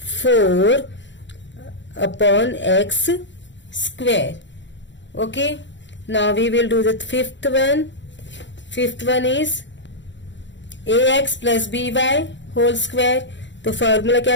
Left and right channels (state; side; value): late; right; 0.53 ms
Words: 4 upon x square. Okay, now we will do the fifth one. Fifth one is ax plus b y whole square. तो फॉर्मूला क्या